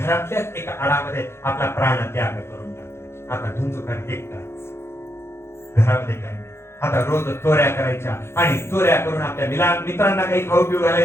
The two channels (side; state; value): right; late; 0.12 ms